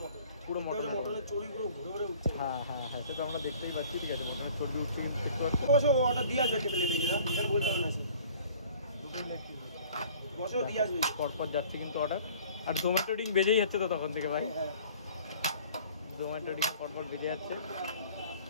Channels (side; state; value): both; inverted; correlation -0.50